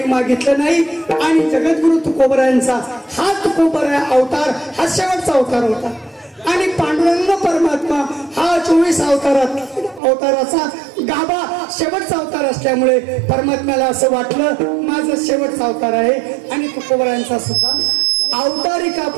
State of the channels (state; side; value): drops out; left; at 10.0 s